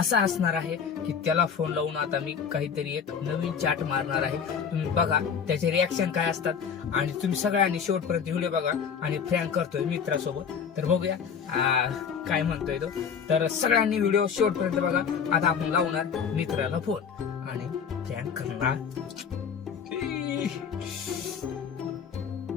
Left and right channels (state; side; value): quieter; right; 6.9 dB